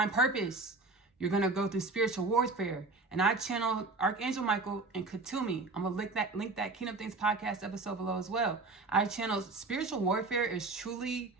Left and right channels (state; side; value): quieter; left; 3.6 dB